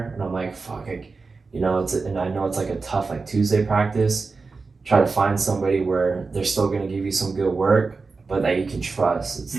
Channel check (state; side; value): quieter; left; 4.3 dB